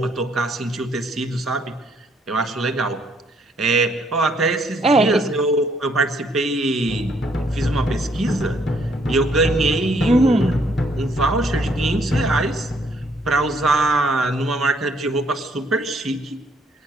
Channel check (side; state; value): both; normal; correlation 0.68